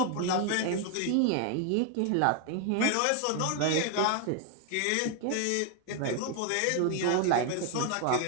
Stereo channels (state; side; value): different; both; correlation 0.00